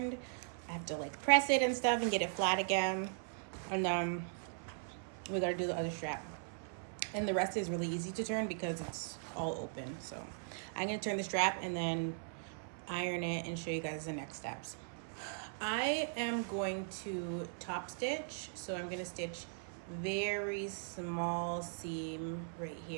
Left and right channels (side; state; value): left; silent; 52 dB below the other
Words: I have to like press it and stuff and get it flat again. And we gotta do the other strap. And the rest is really easy to turn because it's all open. So I'm gonna turn the strap and then iron it and show you guys the next steps. I am going to top stitch. So I'm gonna stitch very small seam right